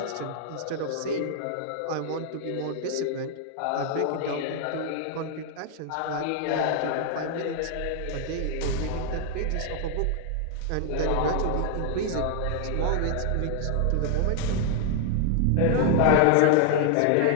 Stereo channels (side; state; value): both; different; correlation 0.00